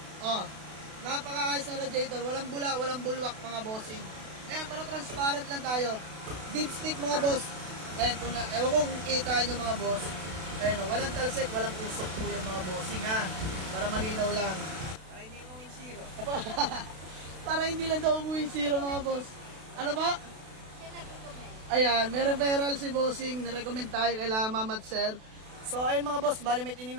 Oh, napakaayos na radiator. Walang bula, walang bulwak mga bossing. Ayan, pero transparent lang tayo. Deep stick mga boss. Ayan, ewan kung kita nyo mga boss. Ayan, walang talsik, walang usok po yan mga bossing ha. Para malinaw lang. Para hindi mo win zero. Para hindi lang daw umuwi zero mga boss. Ano ba? Ayan, may referral si bossing. Nirecommend tayo kay Ma'am at sir. So, ayun mga boss, bali may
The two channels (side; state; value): left; late; 32 ms